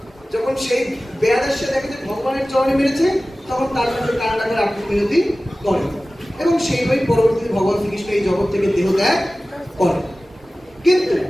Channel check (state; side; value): normal; both; correlation 0.97